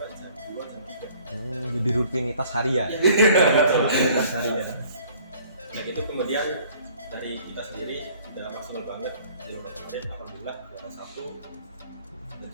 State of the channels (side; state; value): both; inverted; correlation -0.55